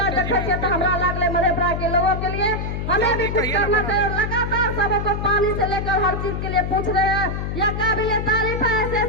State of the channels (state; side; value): noise; left; hum, 3 dB below the sound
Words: तो हमारा लागले मधेपुरा के लोगों के लिए हमें भी कुछ करना चाहिए। लगातार सबको पानी से लेकर हर चीज के लिए पूछ रहे हैं, यह काबिल तारीफ है।